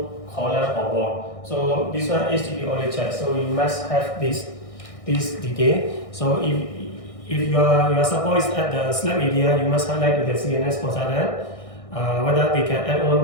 column or wall. So this one HDB only check. So you must have this detail. So if your support is at the slab area, you must highlight to the CNS consultant whether they can add on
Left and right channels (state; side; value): late; right; 1.6 ms